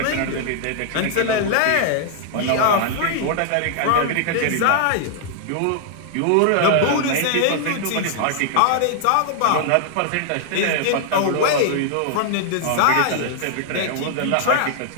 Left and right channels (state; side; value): different; both; correlation -0.01